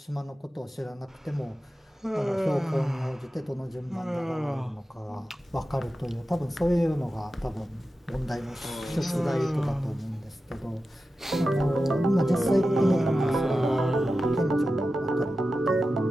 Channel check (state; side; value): normal; both; correlation 0.92